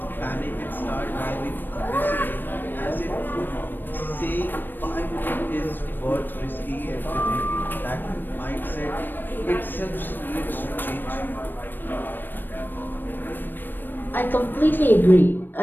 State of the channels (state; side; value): late; right; 0.093 ms